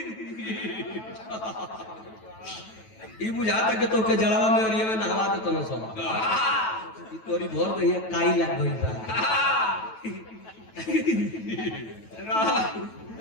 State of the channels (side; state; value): right; late; 9.2 ms